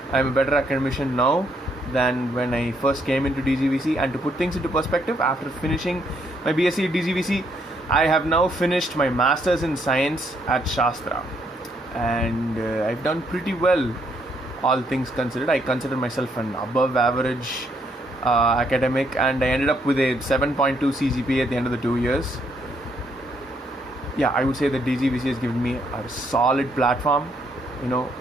now than when I first came into DGVC. And to put things into perspective, after finishing my BSc at DGVC, I have now finished my Masters in Science at Shastra, and I've done pretty well, all things considered. I consider myself an above average academic, and I ended up with a 7.2 CGPA at the end of the 2 years. Yeah, I would say that DGVC has given me a solid platform,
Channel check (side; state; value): both; normal; correlation 0.72